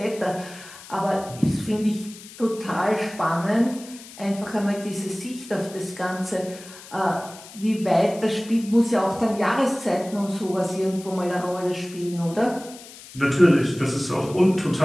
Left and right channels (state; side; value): noise; left; hiss, 17 dB below the sound